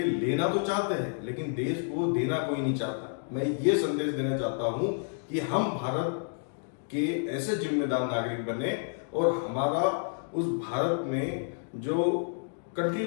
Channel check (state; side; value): silent; right; digital silence